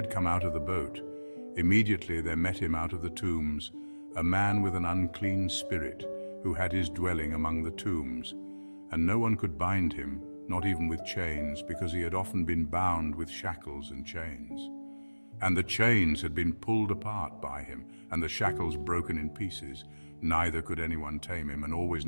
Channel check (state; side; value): inverted; both; correlation -1.00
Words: come out of the boat, immediately there met him out of the tombs a man with an unclean spirit, who had his dwelling among the tombs. And no one could bind him, not even with chains, because he had often been bound with shackles and chains. And the chains had been pulled apart by him, and the shackles broken in pieces. Neither could anyone tame him, and always